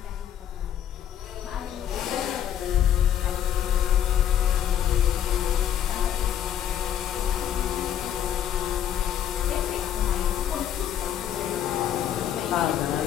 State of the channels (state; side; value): quieter; right; 10.1 dB